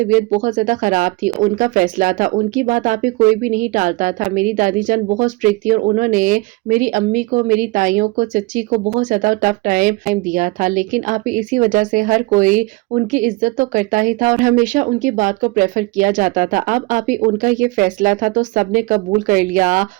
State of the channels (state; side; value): quieter; left; 23.5 dB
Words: बहुत ज्यादा खराब थी, उनका फैसला था, उनकी बात आप ही कोई भी नहीं टालता था। मेरी दादी जान बहुत स्ट्रिक्ट थी और उन्होंने मेरी अम्मी को, मेरी ताइयों को, चच्ची को बहुत ज्यादा टफ टाइम दिया था। लेकिन आप ही इसी वजह से हर कोई उनकी इज्जत तो करता ही था और हमेशा उनकी बात को प्रेफर किया जाता था। अब आप ही उनका ये फैसला था तो सबने कबूल कर लिया।